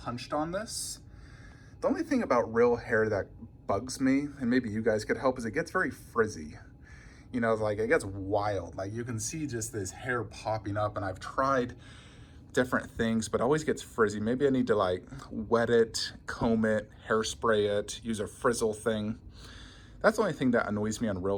on this. The only thing about real hair that bugs me, and maybe you guys could help, is it gets very frizzy. You know, like it gets wild. Like you can see just this hair popping up, and I've tried different things, but it always gets frizzy. Maybe I need to like wet it, comb it, hairspray it, use a frizzle thing. That's the only thing that annoys me on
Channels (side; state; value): both; identical; correlation 1.00